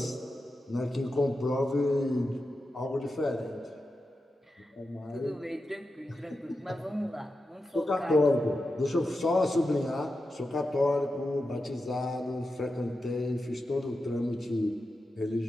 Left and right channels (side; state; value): both; normal; correlation 0.90